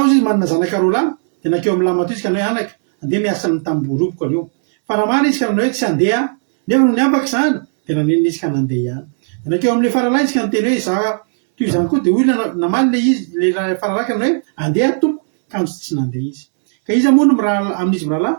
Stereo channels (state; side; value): silent; left; digital silence